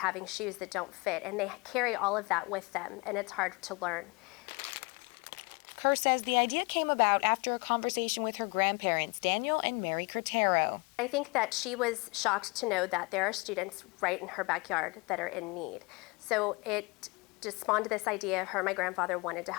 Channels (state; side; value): quieter; right; 27.8 dB